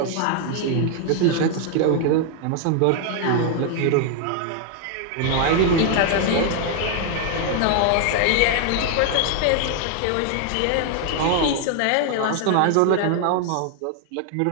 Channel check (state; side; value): different; both; correlation 0.00